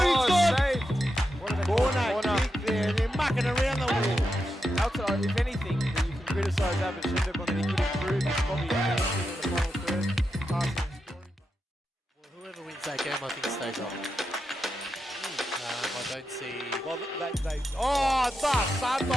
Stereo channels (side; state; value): both; normal; correlation 0.87